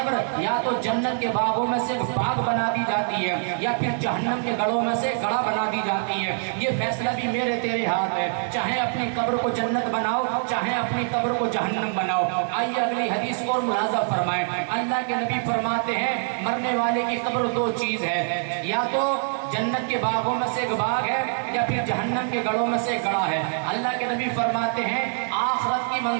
یا تو جنت کے باغوں میں سے باغ بنا دی جاتی ہے یا پھر جہنم کے گڑھوں میں سے گڑھا بنا دی جاتی ہے۔ یہ فیصلہ بھی میرے تیرے ہاتھ ہے، چاہے اپنی قبر کو جنت بناؤ چاہے اپنی قبر کو جہنم بناؤ۔ آئیے اگلی حدیث کو اور ملاحظہ فرمائیں، اللہ کے نبی فرماتے ہیں مرنے والے کی قبر دو چیز ہے، یا تو جنت کے باغوں میں سے ایک باغ ہے یا پھر جہنم کے گڑھوں میں سے گڑھا ہے۔ اللہ کے نبی فرماتے ہیں آخرت کی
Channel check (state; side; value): silent; left; 62 dB below the other